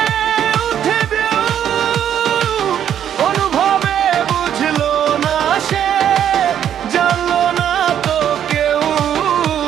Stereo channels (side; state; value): left; quieter; 9.7 dB